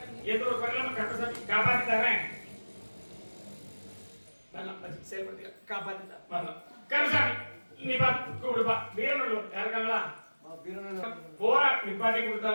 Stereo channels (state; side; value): inverted; both; correlation -1.00